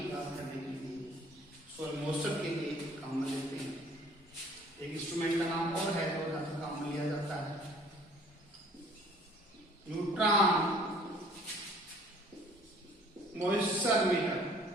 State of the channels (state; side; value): normal; both; correlation 0.54